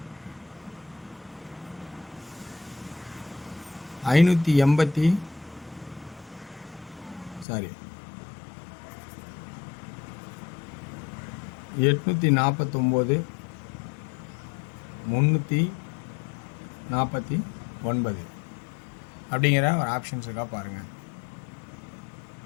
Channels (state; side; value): drops out; right; at 7.5 s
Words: ஐநூற்றி 849, 349 அப்படிங்கிற ஒரு ஆப்ஷன்ஸ் இருக்கா பாருங்கள்.